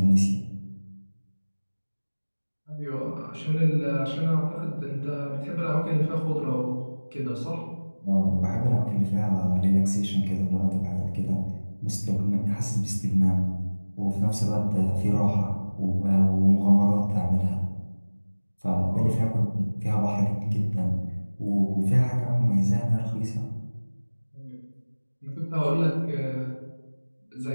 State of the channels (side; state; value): both; inverted; correlation -1.00